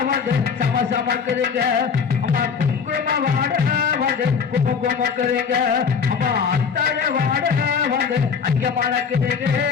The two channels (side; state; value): right; quieter; 6.2 dB